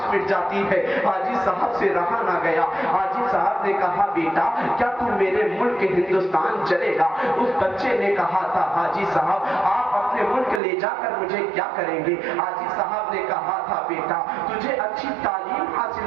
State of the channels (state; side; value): drops out; left; at 10.6 s